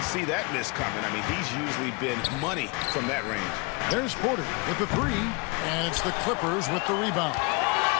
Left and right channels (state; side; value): quieter; right; 29.1 dB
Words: see that miss coming. I mean, he's usually been money from that range. There's Porter with the 3. And it's the Clippers with the rebound.